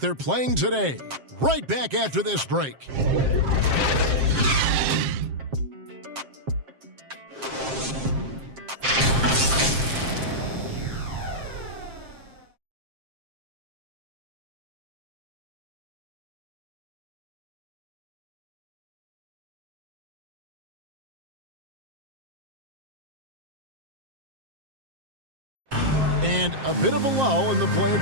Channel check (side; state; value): left; late; 7.5 ms